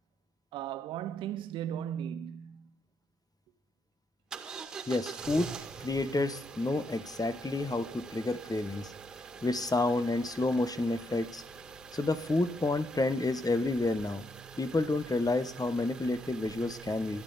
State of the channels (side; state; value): both; normal; correlation 0.79